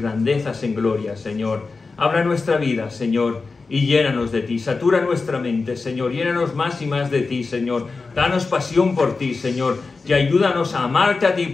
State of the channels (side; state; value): right; quieter; 4.2 dB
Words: en gloria, Señor. Habla nuestra vida, Señor, y llénanos de ti. Satura nuestra mente, Señor. Llénanos más y más de ti, Señor. Danos pasión por ti, Señor. Y ayúdanos a amarte a ti